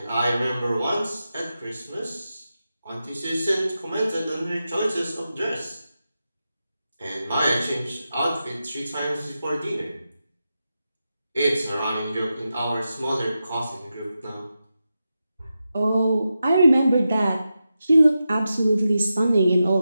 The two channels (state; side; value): inverted; both; correlation -0.90